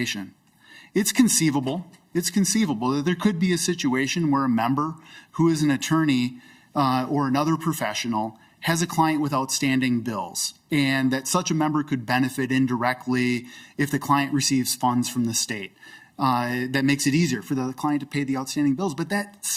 It's conceivable that there could be a situation where a member who is an attorney or another professional has a client with outstanding bills, and that such a member could benefit indirectly if the client receives funds from the state. That makes it easier for the client to pay the outstanding bills. But that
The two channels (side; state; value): both; identical; correlation 1.00